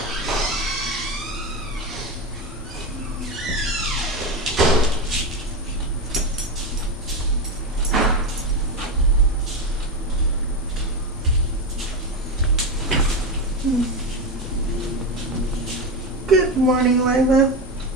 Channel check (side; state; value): both; normal; correlation 0.16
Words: Good morning, Lila.